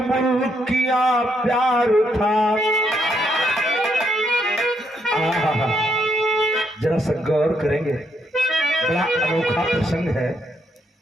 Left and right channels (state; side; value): normal; both; correlation 0.76